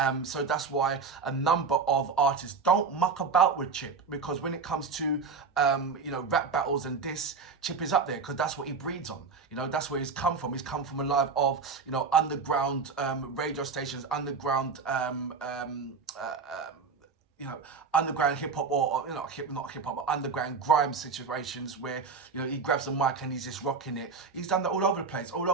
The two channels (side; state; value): left; quieter; 5.1 dB